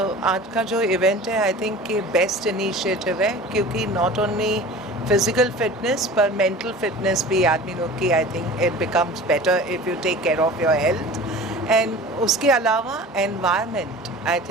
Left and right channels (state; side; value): normal; both; correlation 0.39